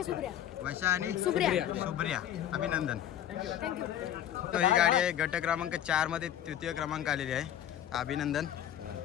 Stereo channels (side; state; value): right; quieter; 10.9 dB